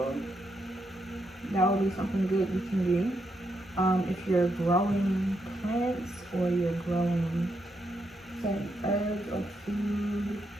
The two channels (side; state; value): both; normal; correlation 0.80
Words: That would be something good you can do. If you're growing plants or you're growing certain herbs or food,